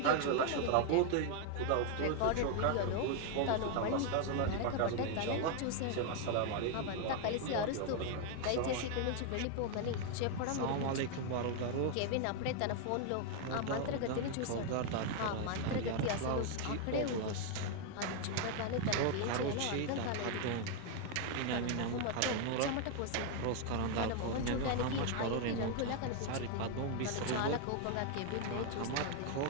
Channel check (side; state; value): both; different; correlation 0.00